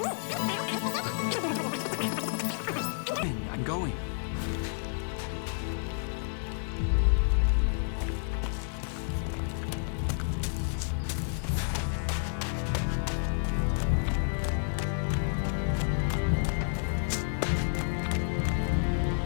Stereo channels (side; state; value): right; silent; 58 dB below the other